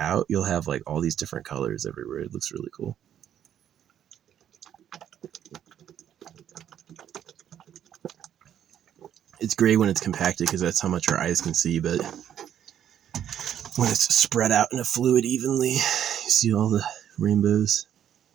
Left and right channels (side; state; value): left; quieter; 10.0 dB